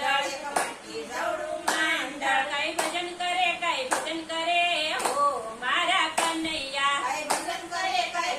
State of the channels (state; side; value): identical; both; correlation 1.00